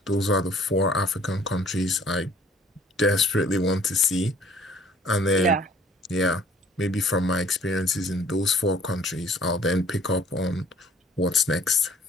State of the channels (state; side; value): normal; both; correlation 0.55